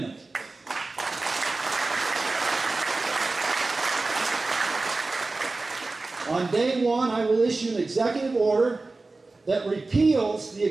On day one, I will issue an executive order that repeals the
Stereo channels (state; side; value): quieter; left; 3.4 dB